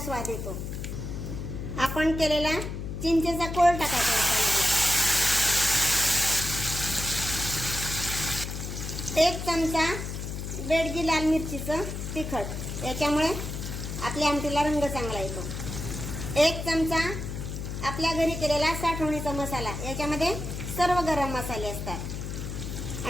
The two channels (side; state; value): left; noise; hum, 6 dB below the sound